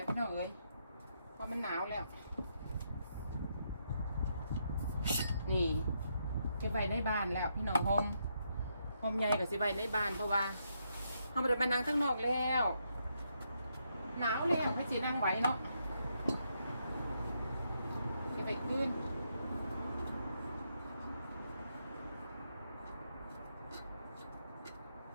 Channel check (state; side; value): inverted; both; correlation -0.78